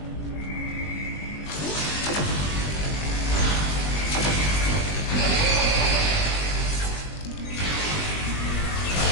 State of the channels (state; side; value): late; right; 20 ms